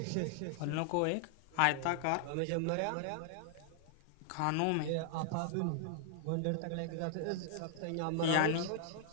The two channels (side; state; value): both; different; correlation 0.00